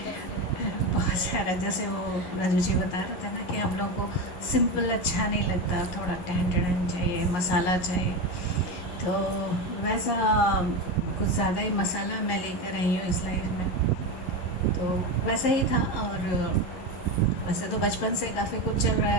बहुत सारा, जैसे वो राजू जी बता रहे थे ना कि हम लोग को सिंपल अच्छा नहीं लगता, थोड़ा टेंशन चाहिए, मसाला चाहिए। तो वैसा कुछ ज़्यादा ही मसाला मैं लेकर आई हूँ इस लाइफ में। तो वैसा ही था। और वैसे तो बचपन से काफ़ी कुछ चल रहा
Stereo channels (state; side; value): late; right; 11 ms